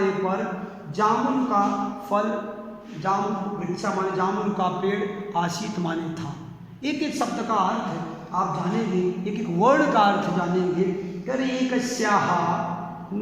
पर जामुन का फल, जामुन वृक्ष माने जामुन का पेड़, आसीत माने था। एक एक शब्द का अर्थ आप जानेंगे, एक एक वर्ड का अर्थ जानेंगे। करे एकस्याः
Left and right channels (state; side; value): identical; both; correlation 1.00